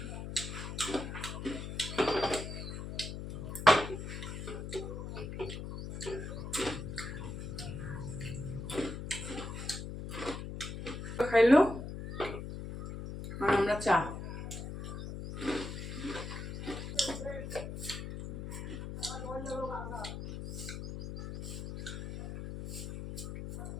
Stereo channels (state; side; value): noise; left; hum, 7 dB below the sound